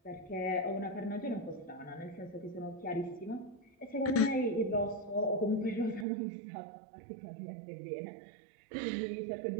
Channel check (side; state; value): left; drops out; at 6.1 s